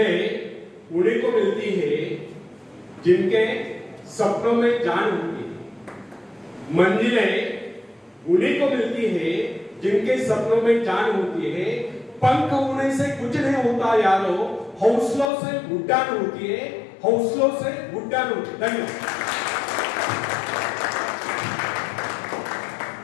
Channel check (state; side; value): drops out; right; at 15.3 s